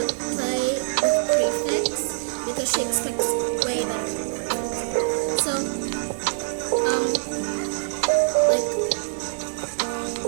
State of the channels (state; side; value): silent; left; digital silence